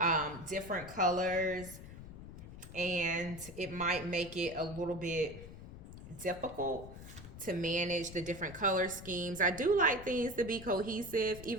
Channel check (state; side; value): noise; left; rumble, 13 dB below the sound